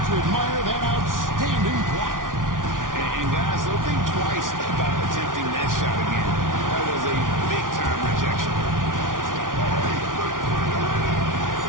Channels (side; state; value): left; late; 0.89 ms